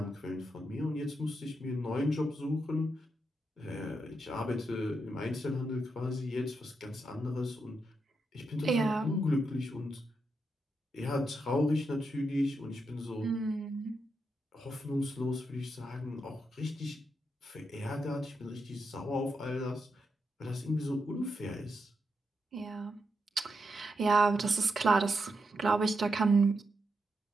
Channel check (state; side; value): normal; both; correlation 0.84